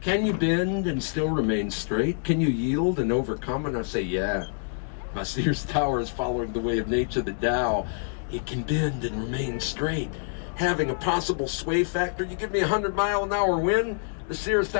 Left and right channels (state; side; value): silent; right; digital silence